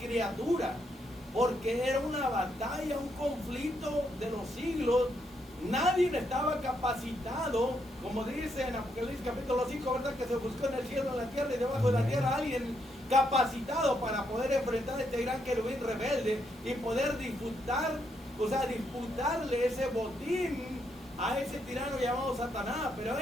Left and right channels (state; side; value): normal; both; correlation 0.77